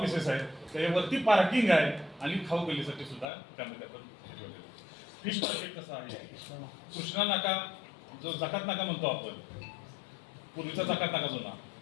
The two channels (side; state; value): right; drops out; at 3.2 s